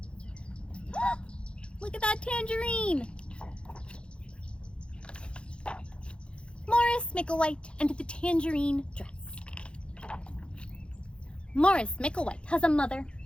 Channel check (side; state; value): right; late; 0.056 ms